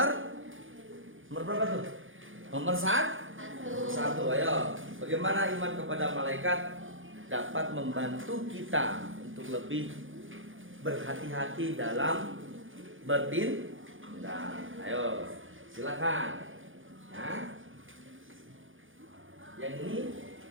berapa tuh? Nomor 1. Ayo, bagaimana iman kepada malaikat dapat membantu kita untuk lebih berhati-hati dalam bertindak. Ayo, silakan. Ya. Yang ini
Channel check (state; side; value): late; left; 0.58 ms